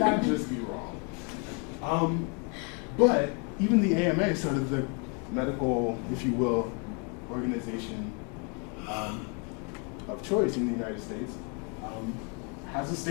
just be wrong. But even the AMA, sort of the medical, if you will, organization of choice in the United States, has a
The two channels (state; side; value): quieter; right; 35.8 dB